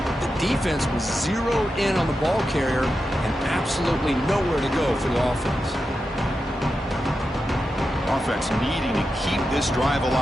The defense was zeroed in on the ball carrier and absolutely nowhere to go for the offense. Offense needing to keep this drive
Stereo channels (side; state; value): both; normal; correlation 0.89